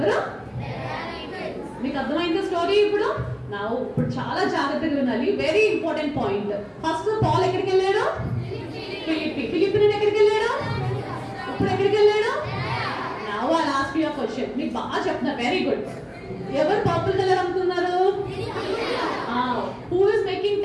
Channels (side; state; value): both; identical; correlation 1.00